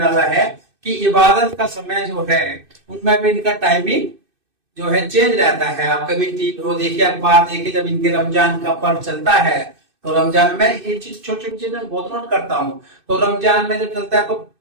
है कि इबादत का समय जो है उनमें भी इनका टाइमिंग जो है चेंज रहता है। आप कभी वो देखिए, अखबार देखिए, जब इनके रमजान का पर्व चलता है, तो रमजान में ये चीज छोटी छोटी चीजें बहुत नोट करता हूँ। तो रमजान में जब चलता है तो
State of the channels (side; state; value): left; late; 2.6 ms